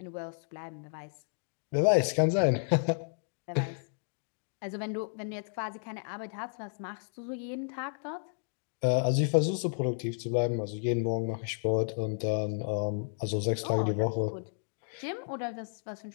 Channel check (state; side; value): silent; right; digital silence